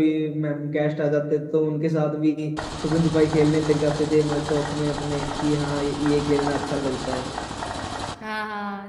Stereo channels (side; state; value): both; identical; correlation 1.00